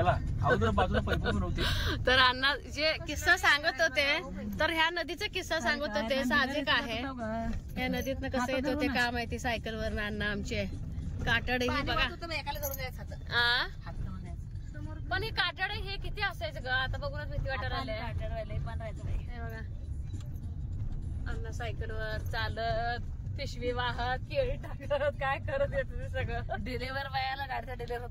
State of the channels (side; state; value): both; identical; correlation 1.00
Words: अगोदर बाजूला पैपाई नव्हती. तर अण्णा जे किस्सा सांगत होते तर ह्या नदीचा किस्सा सांगत होते साहजिक आहे. ह्या नदीतनं कसं येत होते का माहिती सायकलवर अण्णा आमचे काटड ही बघा एकाला धरून जायचं पण हे काटड हे किती असायचं ग आता बघूनच भीती वाटायला आले. पण राहायचं हे बघा अण्णा सायकलवर चालत, पिशवी वाहत, केळी टाकत, काय करत येत ते सगळं. डिलेवर बायाला गाडीचा डिलेवर